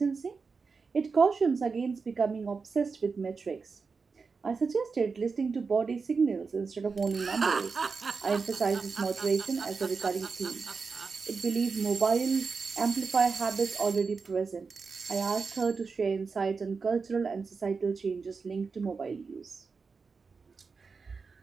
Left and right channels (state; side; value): quieter; left; 4.9 dB